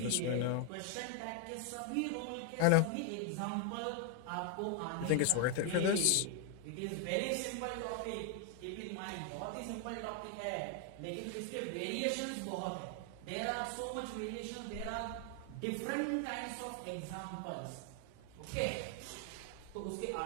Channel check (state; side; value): different; both; correlation 0.00